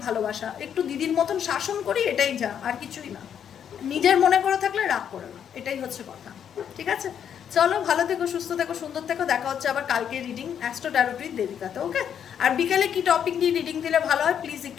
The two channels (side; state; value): right; quieter; 8.6 dB